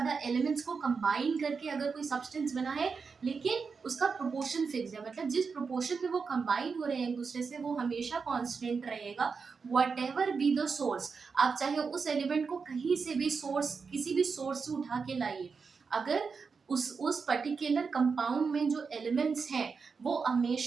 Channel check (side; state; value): left; quieter; 5.2 dB